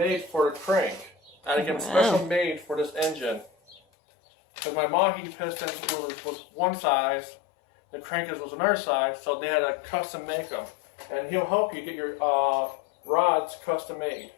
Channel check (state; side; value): drops out; right; at 3.8 s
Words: for the crank. I had to get them special made for this engine. Because my Mahi piston was one size, the crankers was another size, so they had to custom make them. And he'll help you get your rods custom made.